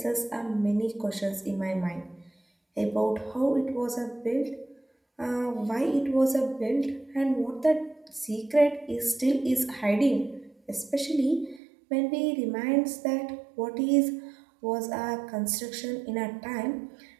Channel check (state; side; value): drops out; left; at 11.6 s